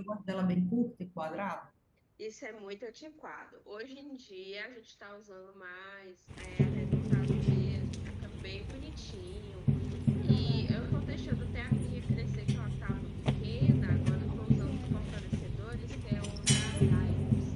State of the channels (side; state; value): both; identical; correlation 1.00